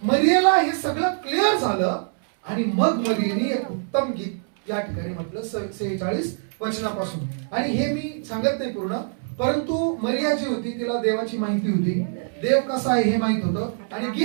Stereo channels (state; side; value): silent; left; 63 dB below the other